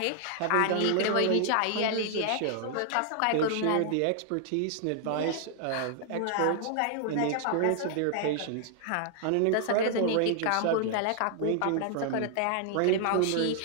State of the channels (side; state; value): both; different; correlation 0.00